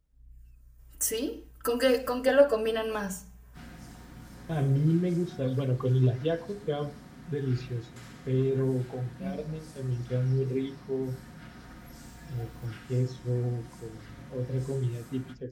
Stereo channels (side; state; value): both; identical; correlation 1.00